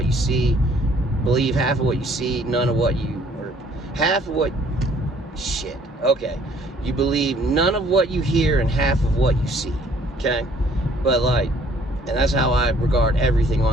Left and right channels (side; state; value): both; normal; correlation 0.60